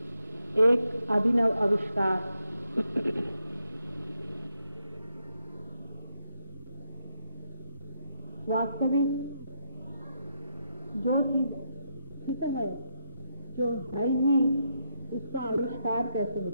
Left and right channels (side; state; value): both; inverted; correlation -0.81